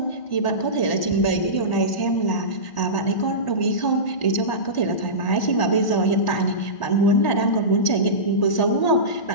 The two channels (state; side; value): late; right; 1.0 ms